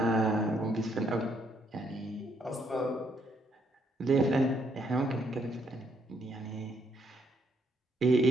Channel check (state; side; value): normal; both; correlation 0.72